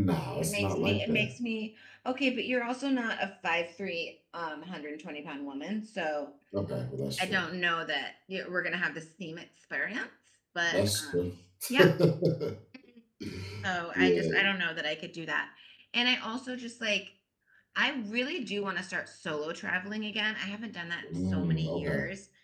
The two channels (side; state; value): both; identical; correlation 1.00